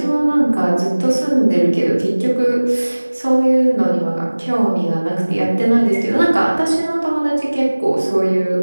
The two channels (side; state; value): both; inverted; correlation -1.00